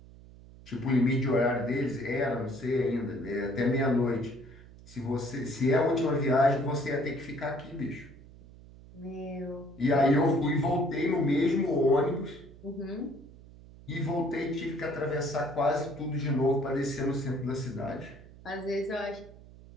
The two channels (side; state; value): right; noise; hum, 20 dB below the sound